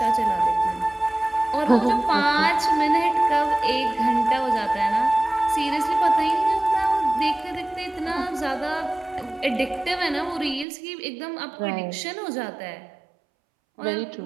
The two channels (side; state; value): left; drops out; at 10.7 s